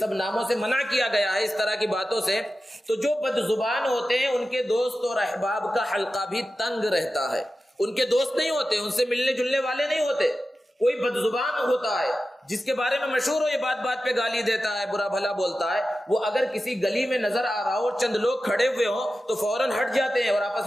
ناموں سے منع کیا گیا ہے، اس طرح کی باتوں سے. تو جو بد زبان ہوتے ہیں ان کے دوست اور احباب کا حلقہ بھی تنگ رہتا ہے. ان کے دوست نہیں ہوتے، ان سے ملنے جلنے والے نہیں ہوتے. کوئی بد زبان ہوتا ہے جس کے بارے میں مشہور ہو، یہ بات بات پہ گالی دیتا ہے، برا بھلا بولتا ہے، وہ اگر کسی گلی میں نظر آ رہا ہو اور چند لوگ کھڑے ہوئے ہوں تو فوراً ہٹ جاتے ہیں اور آپس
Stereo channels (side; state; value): both; normal; correlation 0.93